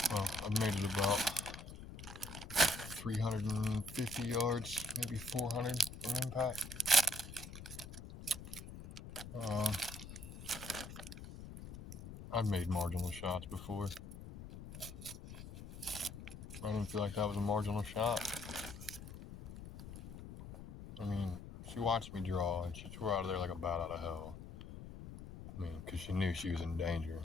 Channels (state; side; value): noise; left; rumble, 12 dB below the sound